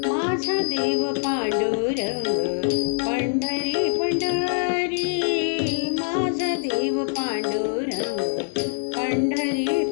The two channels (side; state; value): right; silent; digital silence